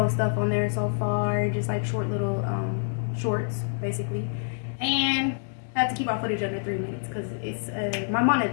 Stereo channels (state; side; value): silent; right; digital silence